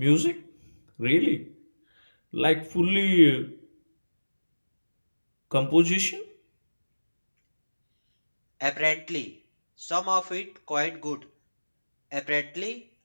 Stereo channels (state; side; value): inverted; both; correlation -1.00